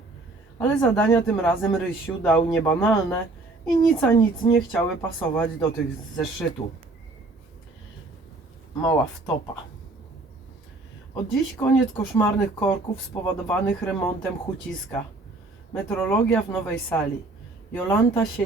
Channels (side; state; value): left; quieter; 3.2 dB